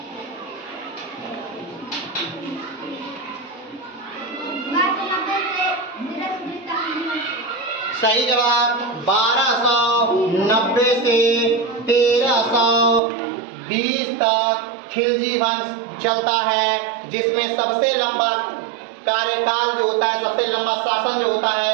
सही जवाब 1290 से 1320 तक खिलजी वंश चलता है, जिसमें सबसे लंबा कार्यकाल जो होता है, सबसे लंबा शासन जो होता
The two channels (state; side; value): drops out; left; at 13.0 s